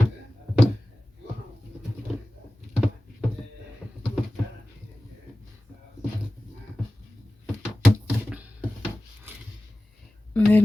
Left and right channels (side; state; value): both; normal; correlation 0.97